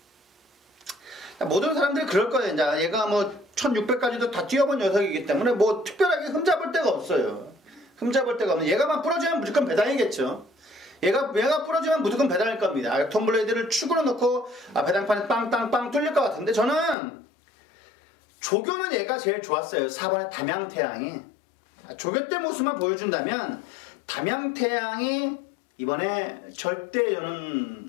모든 사람들이 그럴 거예요. 이제 얘가 뭐 1600까지도 다 뛰어본 녀석이기 때문에 뭐 특별하게 흠잡을 데가 없어요. 흠잡을 데가 없는. 얘가만 부러지면 무조건 배당이겠죠. 얘가 부러지면 무조건 배당일 겁니다. 액톤블레이드를 축으로 넣고 배당판에 빵땅빵 뚫릴 것 같은데, 저는 조교는 얘가 제일 좋았어요. 4번의 담양태양이. 조교 때 모습만 보여준다면 담양태양이 이번에 절대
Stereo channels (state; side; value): drops out; right; at 16.9 s